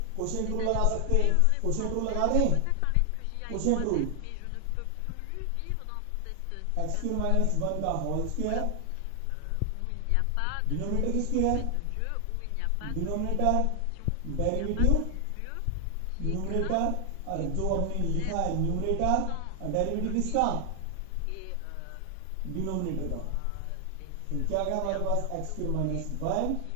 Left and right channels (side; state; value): both; different; correlation 0.00